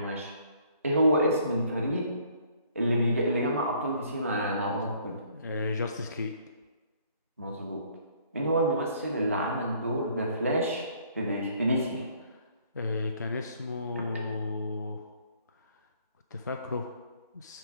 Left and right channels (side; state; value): both; inverted; correlation -0.61